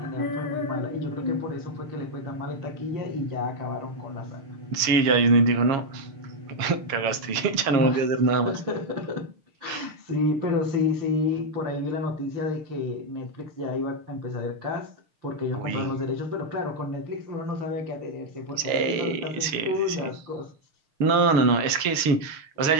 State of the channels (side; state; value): left; late; 6.6 ms